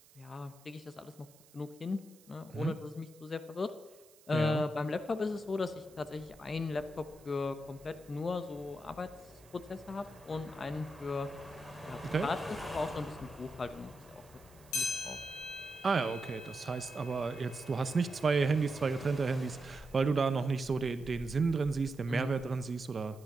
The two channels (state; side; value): noise; right; hiss, 26 dB below the sound